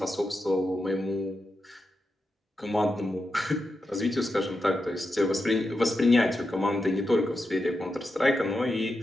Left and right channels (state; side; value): normal; both; correlation 0.88